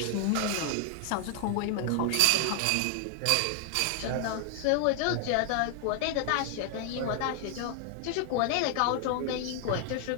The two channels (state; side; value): different; both; correlation 0.00